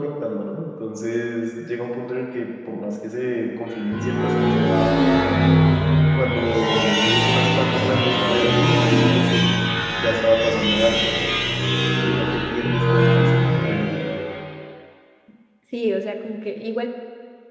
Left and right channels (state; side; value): identical; both; correlation 1.00